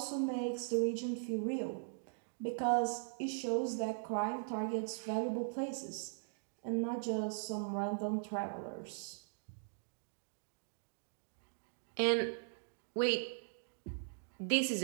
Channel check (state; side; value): silent; left; digital silence